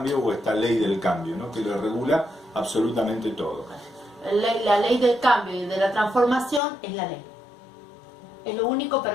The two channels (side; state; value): right; drops out; at 6.6 s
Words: o esta ley del cambio, ¿no? Que lo regula absolutamente todo. La ley del cambio y de la transformación es la ley. Es lo único